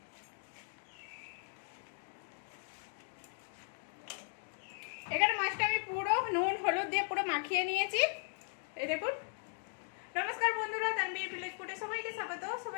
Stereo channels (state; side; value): silent; right; 53 dB below the other